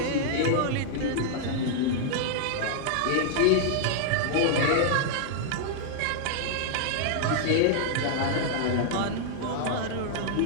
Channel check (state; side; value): different; both; correlation -0.01